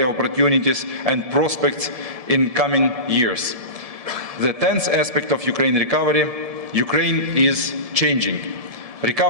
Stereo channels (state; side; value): late; left; 1.7 ms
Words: opportunities and prospects in coming years. The 10th aspect of Ukraine recovery, Ukraine is changing.